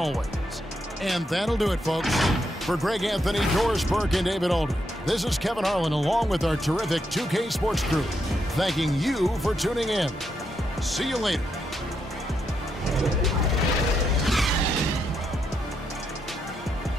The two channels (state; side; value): normal; both; correlation 0.80